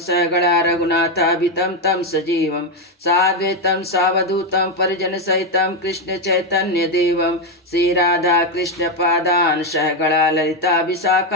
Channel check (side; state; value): both; normal; correlation 0.06